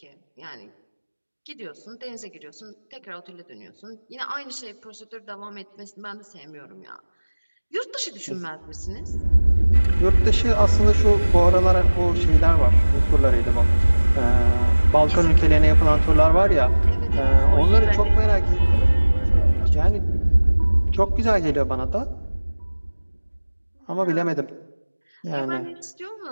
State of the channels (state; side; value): inverted; both; correlation -1.00